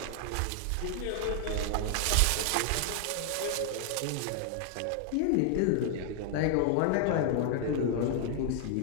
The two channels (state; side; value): different; both; correlation 0.00